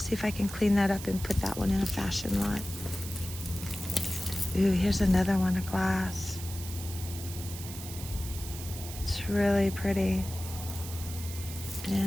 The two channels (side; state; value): right; noise; hiss, 11 dB below the sound